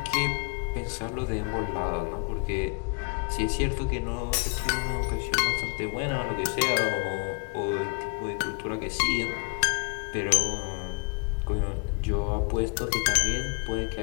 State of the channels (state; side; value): quieter; right; 33.9 dB